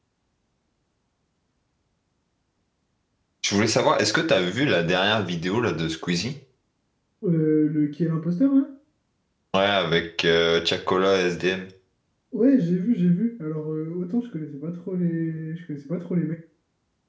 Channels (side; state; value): both; identical; correlation 1.00